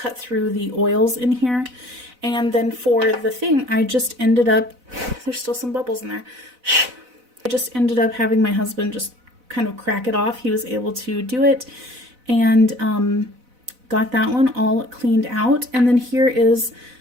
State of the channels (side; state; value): left; late; 4.0 ms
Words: through the oils in here. And then for the thing, I just ended up, there's still some bubbles in there. I just ended up having my husband just kind of crack it off. He was able to do it, and got that one all cleaned out. And then here is,